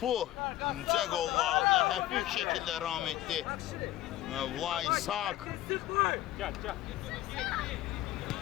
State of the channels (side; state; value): right; quieter; 14.7 dB